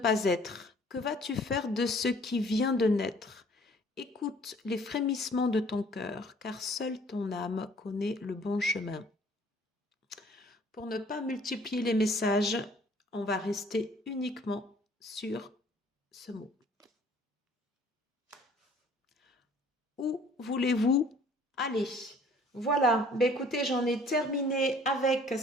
être? Que vas-tu faire de ce qui vient de naître? Écoute les frémissements de ton cœur, car seule ton âme connaît le bon chemin. Pour ne pas multiplier les messages, on va rester uniquement sur ce mot. Où voulez-vous aller? Voilà, ben écoutez, j'en ai terminé avec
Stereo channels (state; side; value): normal; both; correlation 0.55